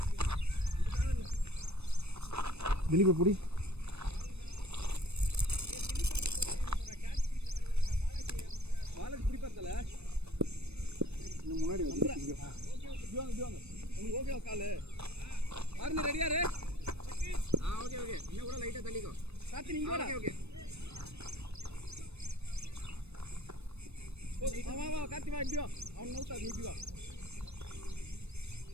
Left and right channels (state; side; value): late; left; 0.80 ms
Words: திலீப் புடி. முன்னாடி வந்து ஓகே காலு ஆர்னி ரெடியா ரே? ஓகே இன்னும் கூட லைட்டா தள்ளிக்கோ. சாத்தி நீங்க கூட. ஓகே வா காத்தி வா இடியோ. அவன் நவுத்தா நீ வா.